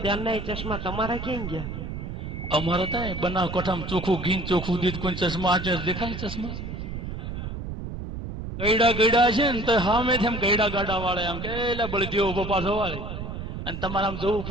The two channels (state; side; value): noise; right; rumble, 7 dB below the sound